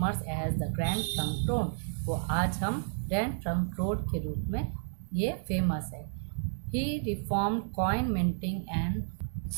as the grand trunk road. वो आज हम ग्रैंड ट्रंक रोड के रूप में ये फेमस है। He reform coin minting and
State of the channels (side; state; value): left; silent; digital silence